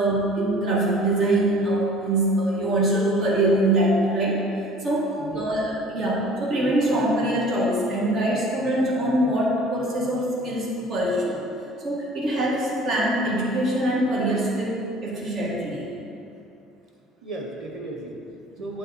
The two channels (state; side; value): normal; both; correlation 0.48